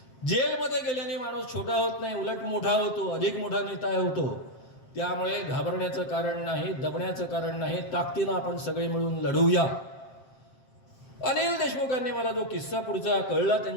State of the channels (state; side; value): late; right; 7.5 ms